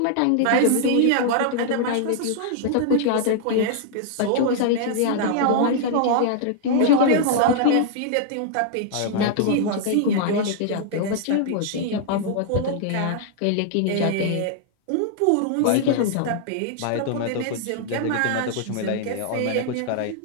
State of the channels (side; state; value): both; different; correlation -0.01